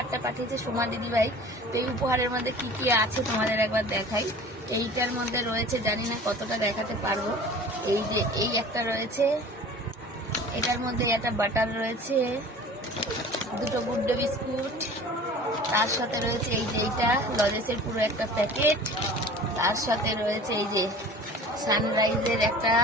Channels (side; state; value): both; normal; correlation 0.42